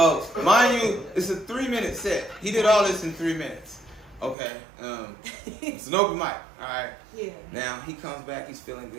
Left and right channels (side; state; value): left; drops out; at 4.4 s